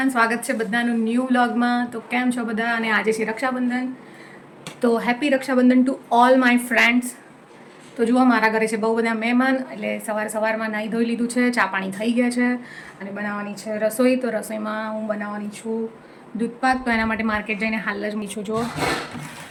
સ્વાગત છે બધાનું ન્યૂ વ્લોગમાં. તો કેમ છો બધા? અને આજે છે રક્ષાબંધન, તો happy Rakshabandhan to all my friends. તો જુઓ, મારા ઘરે છે બહુ બધા મહેમાન, એટલે સવારમાં નાહી ધોઈ લીધું છે, ચા પાણી થઈ ગયા છે અને બનાવવાની છે રસોઈ. તો રસોઈમાં હું બનાવવાની છું દૂધપાક. તો એના માટે માર્કેટ જઈને હાલ જ મીઠું જુઓ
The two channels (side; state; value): both; identical; correlation 1.00